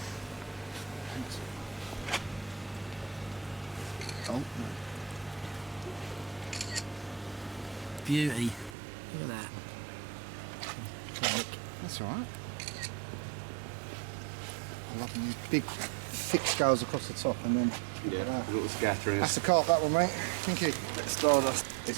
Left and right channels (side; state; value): left; drops out; at 8.8 s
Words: Oh, no. Beauty. Look at that. That's all right. I love them big, thick scales across the top, and then Yeah, a little scattering. that's the carp, that one, mate. Thank you. Stardust.